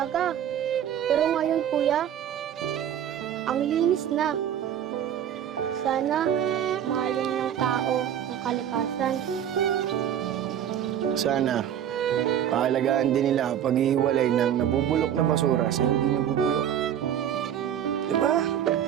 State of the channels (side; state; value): left; quieter; 9.9 dB